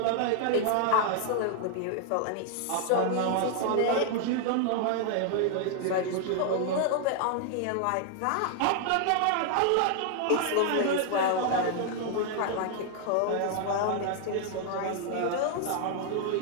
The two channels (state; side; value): different; both; correlation 0.00